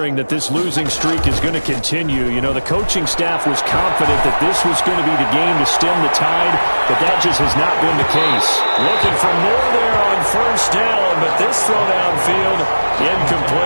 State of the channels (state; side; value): inverted; both; correlation -1.00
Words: that this losing streak is going to continue. The coaching staff was confident that this was going to be the game to stem the tide, but that just has not been the case. Looking for more there on first down, but this throw downfield,